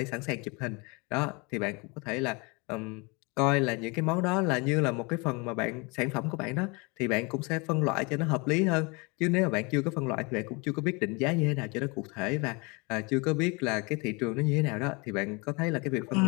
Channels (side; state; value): right; quieter; 28.7 dB